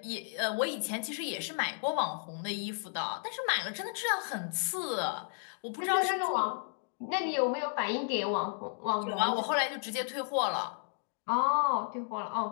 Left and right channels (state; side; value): silent; right; 56 dB below the other